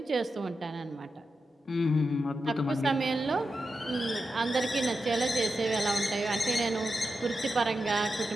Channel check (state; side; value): normal; both; correlation 0.89